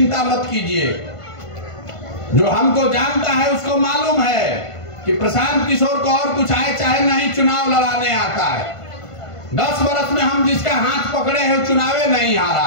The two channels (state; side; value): late; right; 1.5 ms